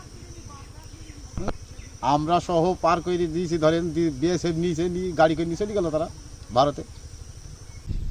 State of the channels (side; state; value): both; identical; correlation 1.00